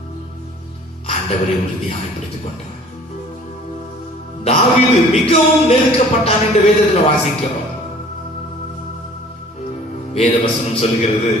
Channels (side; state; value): both; normal; correlation 0.50